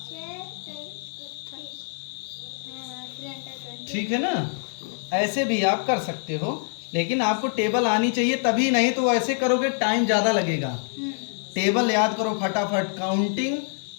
ठीक है ना। ऐसे भी आप कर सकते हो, लेकिन आपको टेबल आनी चाहिए तभी, नहीं तो ऐसे करोगे टाइम ज़्यादा लगेगा। टेबल याद करो फटाफट, काउंटिंग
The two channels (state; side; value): silent; right; digital silence